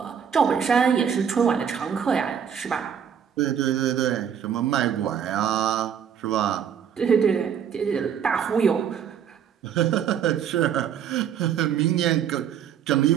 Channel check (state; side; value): quieter; left; 8.2 dB